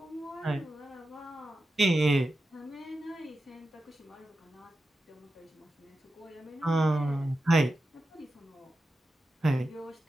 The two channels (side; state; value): both; normal; correlation 0.91